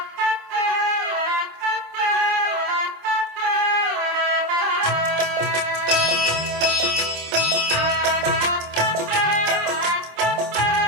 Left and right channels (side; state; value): left; late; 26 ms